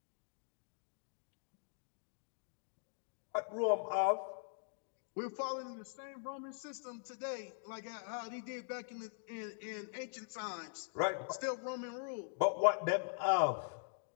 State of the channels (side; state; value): right; silent; digital silence